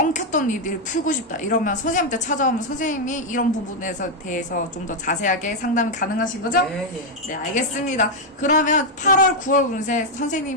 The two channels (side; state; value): both; normal; correlation 0.01